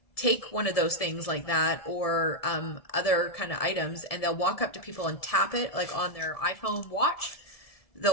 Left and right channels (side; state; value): right; late; 1.7 ms